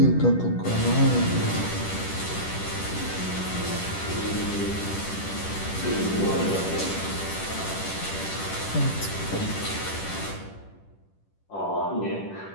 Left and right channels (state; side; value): late; right; 10 ms